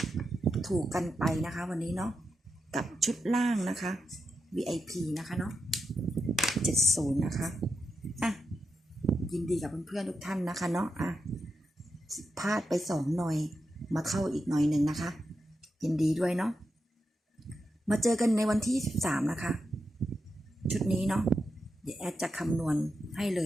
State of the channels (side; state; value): both; normal; correlation 0.87